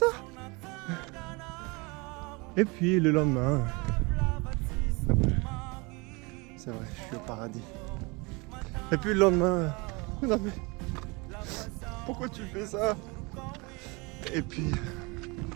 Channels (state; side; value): quieter; left; 27.3 dB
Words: Et puis le lendemain, c'est vrai, je suis au paradis. Et puis le lendemain, non mais, pourquoi tu fais ça? Et puis